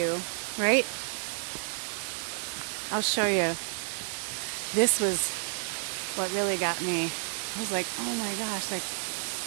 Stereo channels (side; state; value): left; silent; 58 dB below the other